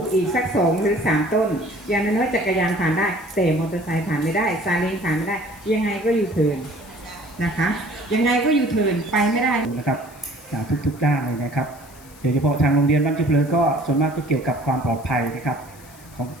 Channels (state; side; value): noise; left; hiss, 23 dB below the sound